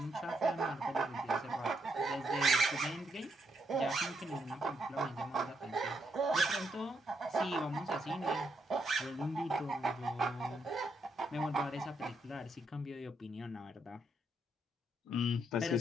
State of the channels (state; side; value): normal; both; correlation 0.77